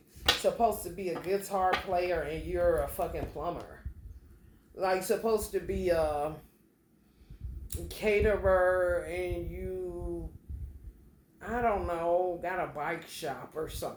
supposed to be a guitar player and you're a fucking plumber. Like supposed to be a caterer and you, I don't know, got a bike shop or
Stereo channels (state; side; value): identical; both; correlation 1.00